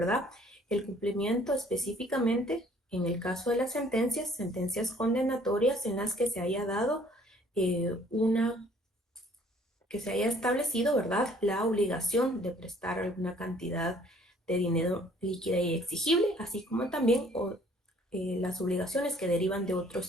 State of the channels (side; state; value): both; normal; correlation 0.58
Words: El cumplimiento específicamente en el caso de las sentencias condenatorias en las que se haya dado que se haya establecido, ¿verdad?, la obligación de prestar alguna cantidad de dinero líquida y exigible, así como también las obligaciones que derivan de